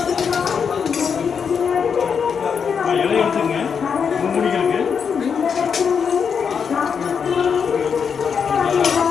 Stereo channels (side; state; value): right; quieter; 6.6 dB